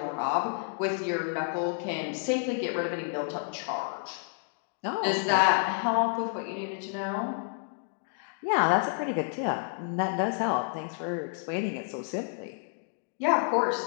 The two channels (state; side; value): silent; right; 58 dB below the other